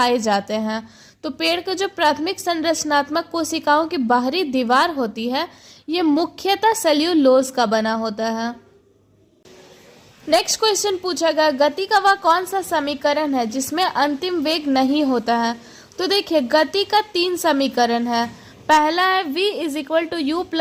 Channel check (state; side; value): identical; both; correlation 1.00